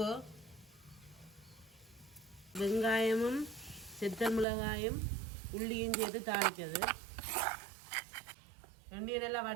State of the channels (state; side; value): drops out; left; at 4.5 s